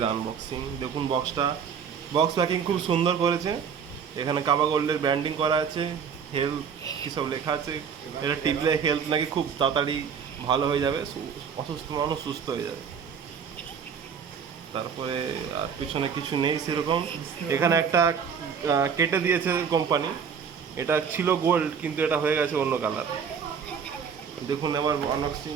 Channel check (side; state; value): left; quieter; 6.9 dB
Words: আনবক্সিং। দেখুন বক্স প্যাকিং খুব সুন্দর করেছে। এখানে কাবা গোল্ডের ব্র্যান্ডিং করা আছে, হেলথ কী সব লেখা আছে। এটা টিপলে হেলথ নাকি খুব তাড়াতাড়ি ভালো হয়ে যাবে, অসুস্থ মানুষ সুস্থ হয়ে যাবে। তারপরে আর পিছনে কিছু নেই সেরকম। এখানে একটা কেটে দিয়েছে কোম্পানি, এটা ছিল গোল্ড কিন্তু এটা হয়ে গেছে অন্য কালার। দেখুন এবার আনবক্সিং